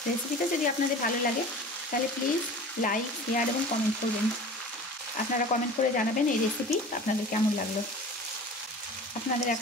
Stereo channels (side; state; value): both; normal; correlation 0.39